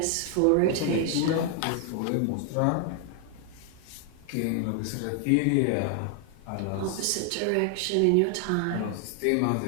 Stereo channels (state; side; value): different; both; correlation 0.00